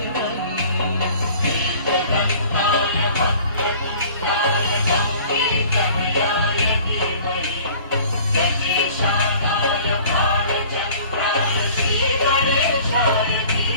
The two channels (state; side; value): inverted; both; correlation -0.48